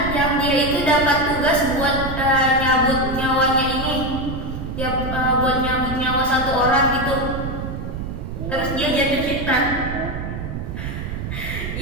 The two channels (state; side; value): noise; right; rumble, 6 dB below the sound